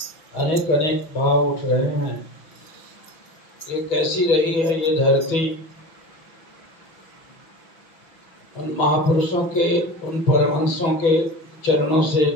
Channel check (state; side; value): late; right; 6.2 ms